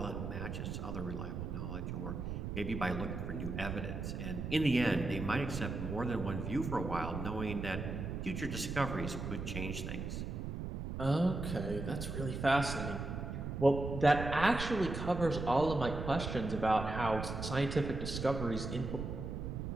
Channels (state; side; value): noise; right; rumble, 5 dB below the sound